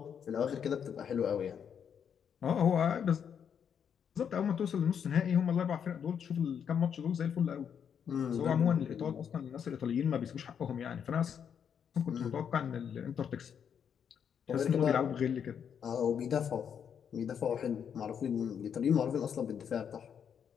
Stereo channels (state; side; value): quieter; right; 7.8 dB